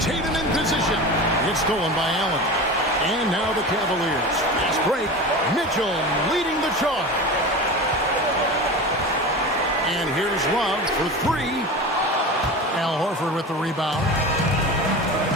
in position. It's stolen by Allen. And now the Cavaliers. Fast break. Mitchell leading the charge. And here's Love for 3. Al Horford with the rebound.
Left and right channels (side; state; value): both; normal; correlation 0.30